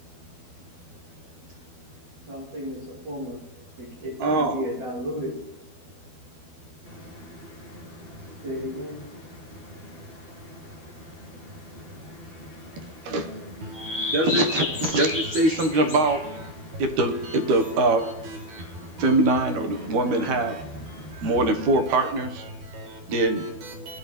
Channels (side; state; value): left; late; 12 ms